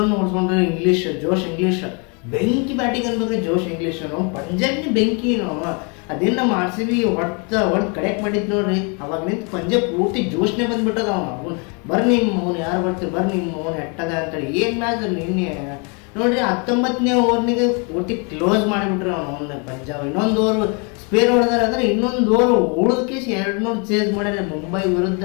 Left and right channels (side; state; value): right; quieter; 34.4 dB